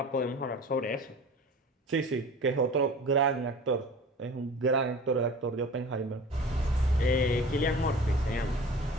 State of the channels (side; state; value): both; normal; correlation 0.40